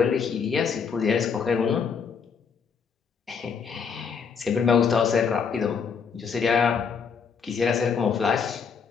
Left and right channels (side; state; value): right; quieter; 6.1 dB